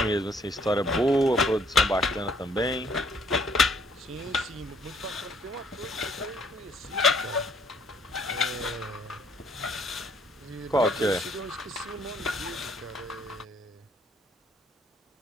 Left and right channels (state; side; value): normal; both; correlation 0.63